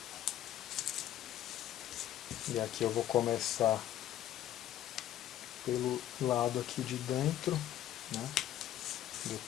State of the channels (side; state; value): right; quieter; 12.2 dB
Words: E aqui eu vou começar pelo lado aqui de dentro, né?